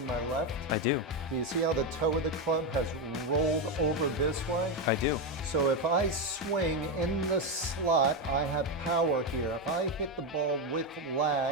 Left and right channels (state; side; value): normal; both; correlation 0.09